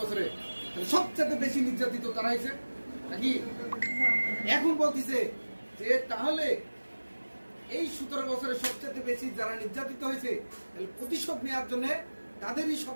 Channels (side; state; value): both; inverted; correlation -1.00